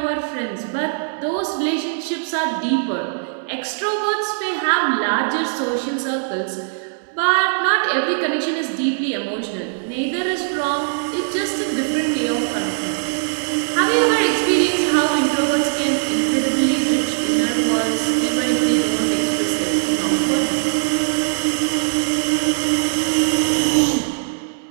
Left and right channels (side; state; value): left; silent; 66 dB below the other